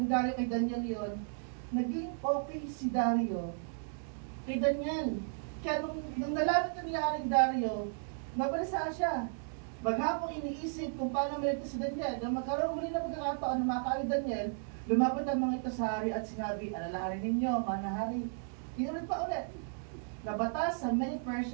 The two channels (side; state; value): left; silent; digital silence